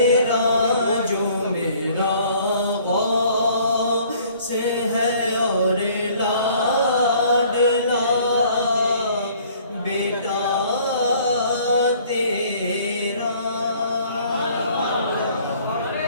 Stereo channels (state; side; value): inverted; both; correlation -0.57